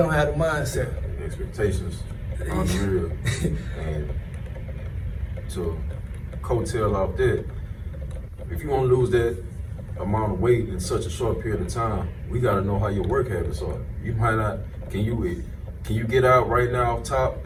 have the mindset. Expectations unreal. And to coattail off that, if you want to lose that amount of weight in such a short period of time, we got to know how your work habits are. You might not, can you get out right now off top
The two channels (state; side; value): identical; both; correlation 1.00